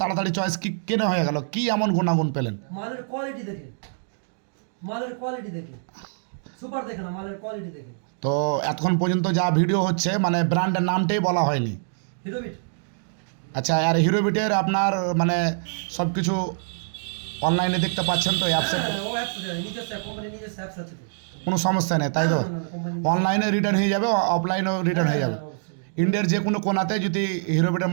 চয়েস কি কেন হয়ে গেল? কি এমন গুণাগুণ পেলেন? মালের কোয়ালিটি দেখে, মালের কোয়ালিটি দেখে, সুপার দেখে না, মালের কোয়ালিটি দেখে। তো এতক্ষণ পর্যন্ত যা ভিডিও হচ্ছে মানে ব্র্যান্ডের নামটাই বলা হয়নি। হিরোবিট। আচ্ছা, আর হিরোবিটের আপনার মানে সব কিছু অনলাইনে দেখতে পাচ্ছেন তো অ্যাপসে? ও অ্যাপস আছে, নিজস্ব কোম্পানির নিজস্ব অ্যাপস আছে তো। কোনো সমস্যা নেই তাই তো? অনলাইনে রিটার্ন হয়ে যাবে, অফলাইনেও রিটার্ন হয়ে যাবে। ইন্ডিয়ার যে কোনো কোনাতে যদি হিরোবিটের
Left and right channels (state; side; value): silent; left; digital silence